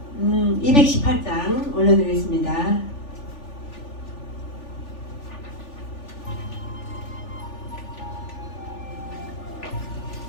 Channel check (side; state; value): right; late; 3.4 ms